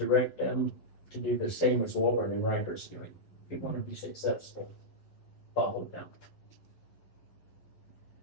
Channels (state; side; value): late; right; 11 ms